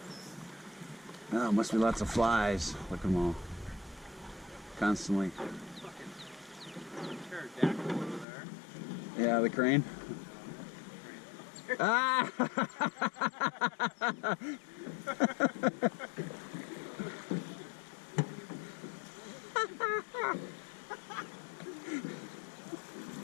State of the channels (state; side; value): drops out; right; at 8.2 s